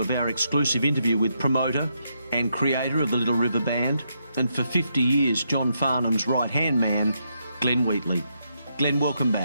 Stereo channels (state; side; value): inverted; both; correlation -0.80